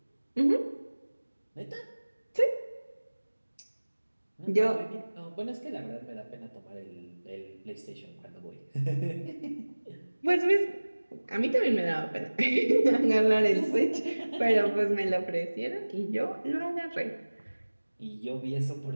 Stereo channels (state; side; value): inverted; both; correlation -1.00